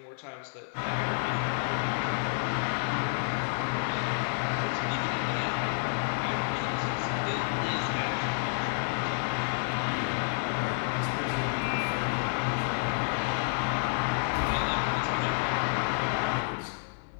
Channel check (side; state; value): right; silent; 58 dB below the other